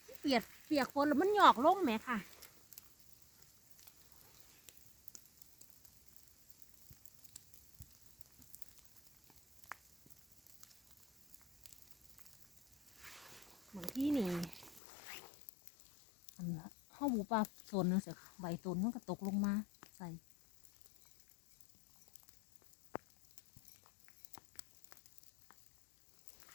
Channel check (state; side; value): drops out; right; at 14.8 s